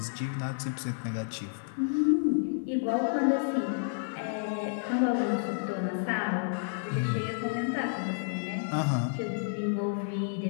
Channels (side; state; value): right; silent; 57 dB below the other